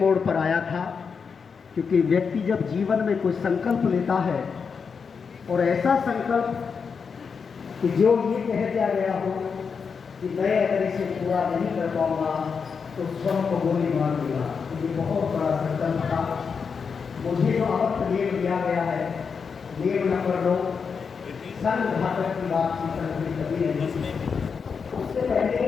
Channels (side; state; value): right; quieter; 5.8 dB